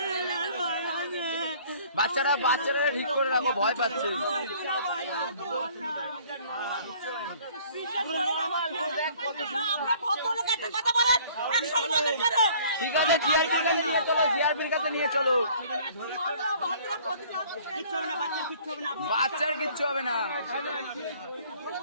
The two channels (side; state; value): both; inverted; correlation -0.55